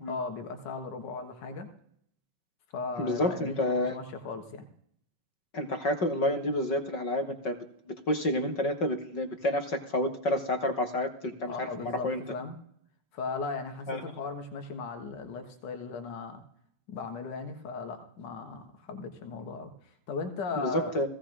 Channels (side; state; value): right; late; 5.3 ms